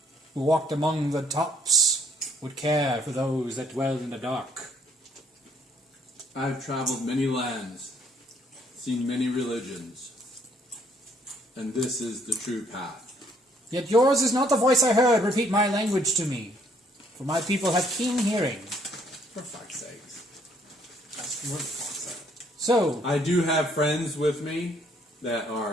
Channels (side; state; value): both; normal; correlation 0.65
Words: who walked among the tops would care for those that dwelled in the dark. I've traveled many lands, seen many religions, and this is the true path. Yet yours is not the voice I heard. Repeat my language to me, for my people have keen hearing. For fuck's sakes. That's what the fuck said. So, I do have friends with me that